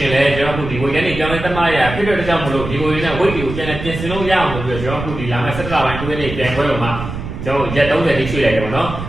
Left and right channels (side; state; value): right; noise; rumble, 8 dB below the sound